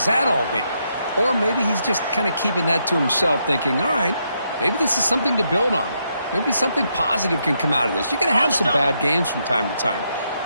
that all game? Or maybe he's just kind of keeping that to himself, thinking, all right, maybe this is something to build on. Maybe something positive can come out of this. You're going to have some bad games from time to time.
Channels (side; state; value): both; inverted; correlation -0.79